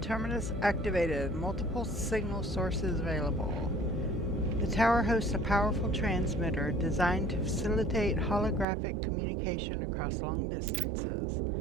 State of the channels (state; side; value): drops out; left; at 8.7 s